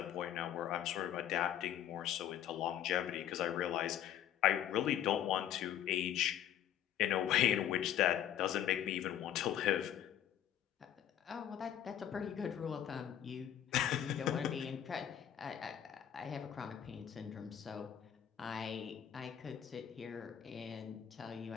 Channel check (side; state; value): right; quieter; 10.4 dB